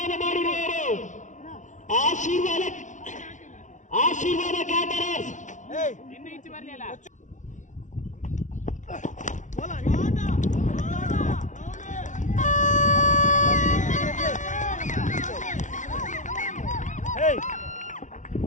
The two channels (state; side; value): late; right; 0.36 ms